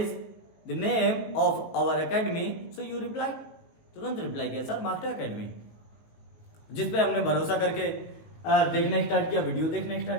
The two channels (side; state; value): right; late; 19 ms